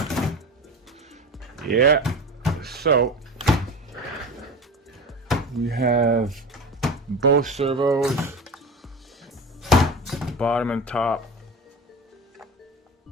Yeah, so we have both servos, bottom and top,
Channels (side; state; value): both; normal; correlation 0.29